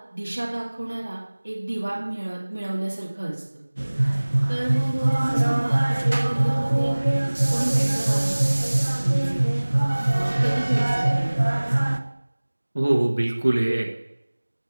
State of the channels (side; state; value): both; inverted; correlation -1.00